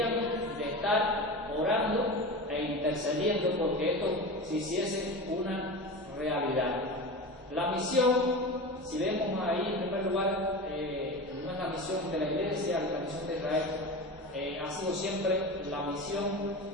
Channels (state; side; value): normal; both; correlation 0.28